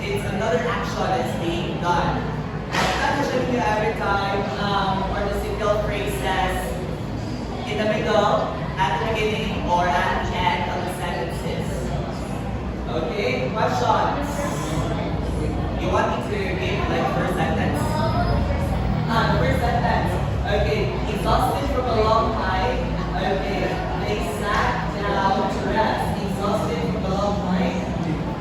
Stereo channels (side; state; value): both; identical; correlation 1.00